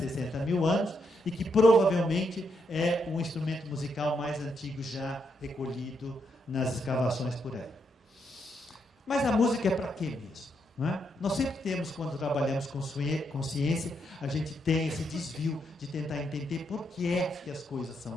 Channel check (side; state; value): both; normal; correlation 0.79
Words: 60 mil anos e que provavelmente é o instrumento musical mais antigo já recolhido nas escavações por aí. Mas a música é para quê mesmo? Não é? Nós sempre temos, quando trabalhamos com ciência, a gente tem esse desvio de tentar entender por que é que as coisas